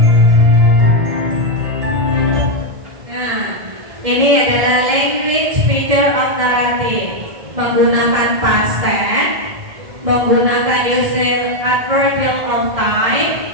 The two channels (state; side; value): late; left; 1.6 ms